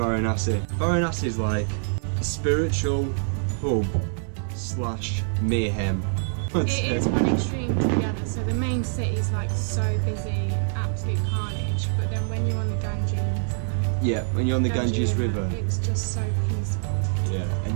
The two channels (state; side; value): silent; left; 62 dB below the other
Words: Varanasi is like a spiritual hub / mayhem. It is one extreme to the other. So the main city is like so busy, absolute carnage. But then when you're on the Ganges, Yeah, when you're on the Ganges River. it's just so peaceful. Yeah,